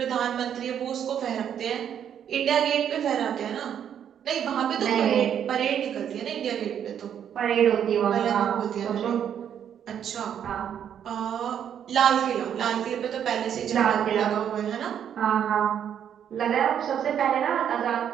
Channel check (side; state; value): left; quieter; 9.0 dB